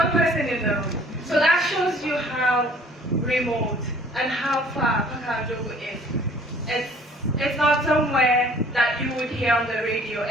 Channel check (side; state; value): both; normal; correlation 0.54